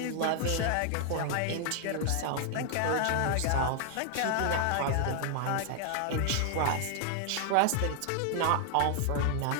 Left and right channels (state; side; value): different; both; correlation 0.00